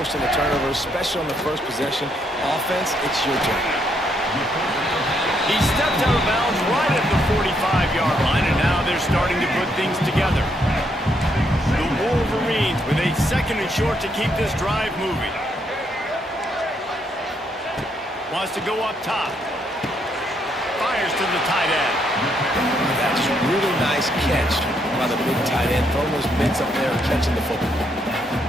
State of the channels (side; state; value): both; normal; correlation 0.74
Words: a turnover, especially on the first possession. Offense, it's your turn. He stepped out of bounds right at the 45-yard line, and now they're starting to put things together. The Wolverines with a 2nd and short to keep this drive moving. Wants to go up top. Fires to the tight end. That's a really nice catch by the big tight end, throwing those mitts up there and catching the football.